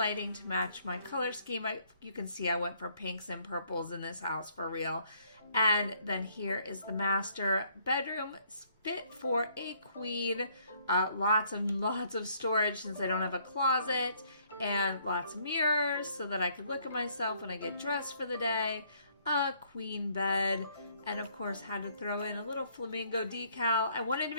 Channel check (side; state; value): both; inverted; correlation -0.65